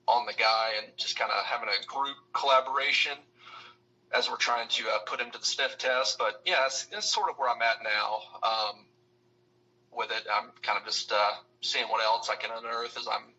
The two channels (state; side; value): identical; both; correlation 1.00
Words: on the guy, and just kind of having a group collaboration as we're trying to put him to the sniff test. But yeah, it's sort of where I'm at now with it. I'm kind of just seeing what else I can unearth as I'm